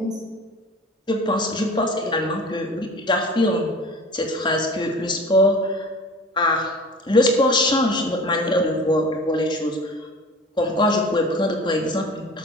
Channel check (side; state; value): both; normal; correlation 0.40